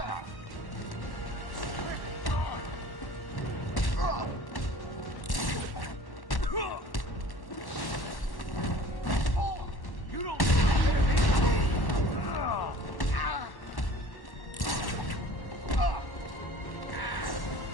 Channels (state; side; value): late; right; 1.1 ms